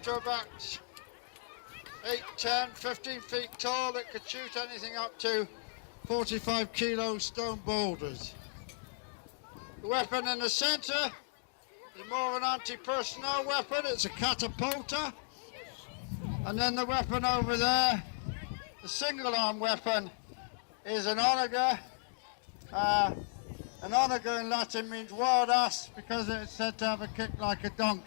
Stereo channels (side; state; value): right; silent; digital silence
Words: to about 8, 10, 15 feet tall, that could shoot anything up to 45 kilo stone boulders. The weapon in the centre is more of an anti-personnel weapon. It's a catapulta. And then the weapon over there, the single arm weapon, is an onager. An onager in Latin means wild ass because it's said to have a kick like a